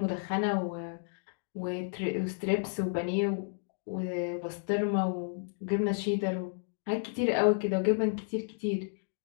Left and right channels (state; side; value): silent; right; digital silence